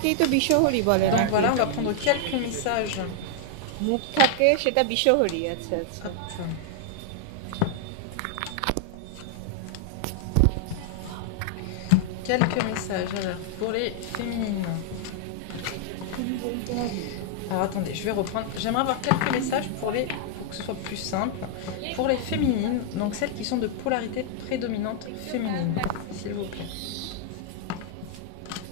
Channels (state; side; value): different; both; correlation 0.00